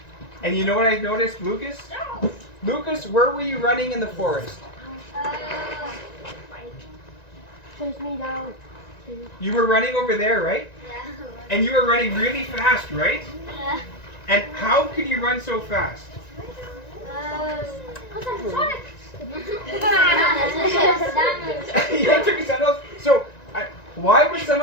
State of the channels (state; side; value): late; right; 1.9 ms